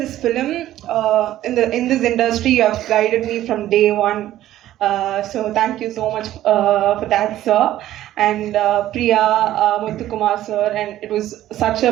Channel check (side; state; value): left; quieter; 13.5 dB